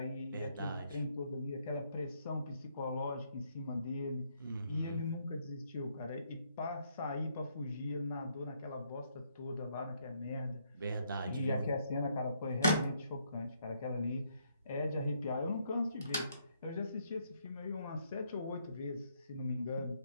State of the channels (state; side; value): inverted; both; correlation -0.72